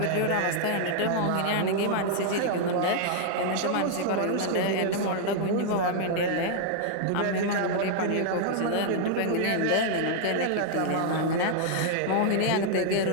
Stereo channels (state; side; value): different; both; correlation 0.00